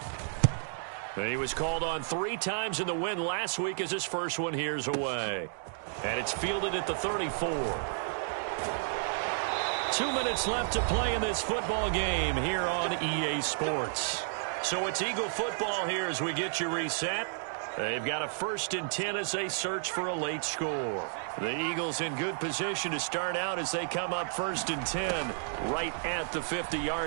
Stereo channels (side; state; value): left; silent; digital silence